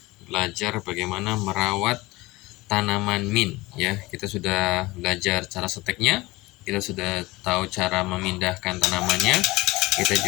belajar bagaimana merawat tanaman mint ya. Kita sudah belajar cara seteknya, kita sudah tahu cara memindahkan tanamannya, kita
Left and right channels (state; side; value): quieter; right; 21.0 dB